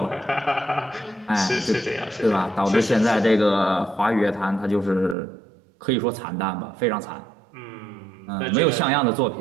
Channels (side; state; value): left; drops out; at 5.2 s